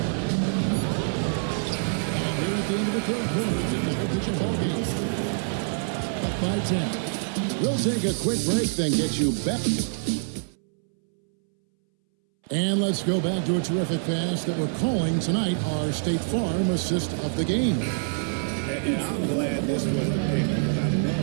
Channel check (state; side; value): silent; left; 61 dB below the other